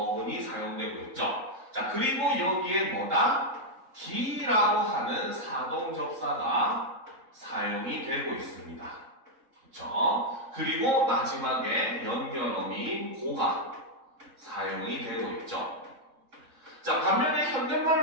사용되고 있죠. 자, 그리고 여기에 뭐다? 기라고 하는 사동접사가 사용이 되고 있습니다. 그렇죠? 그리고 마지막에 연결어미인 고가 사용이 되고 있죠. 자, 반면에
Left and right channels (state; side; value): late; left; 3.7 ms